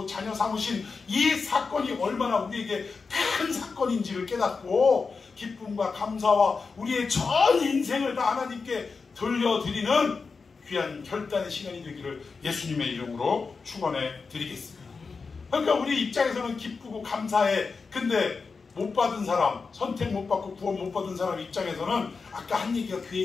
자녀 삼으신 이 사건이 얼마나 우리에게 큰 사건인지를 깨닫고 기쁨과 감사와 우리의 전 인생을 다 하나님께 돌려드리는 귀한 결단의 시간이 되기를 예수님의 이름으로 축원해 드리겠습니다. 그러니까 우리 입장에서는 기쁘고 감사해. 근데 못 받은 사람, 선택 못 받고 구원 못 받은 사람 입장에서는 아까 한 얘기가 그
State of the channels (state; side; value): quieter; right; 4.7 dB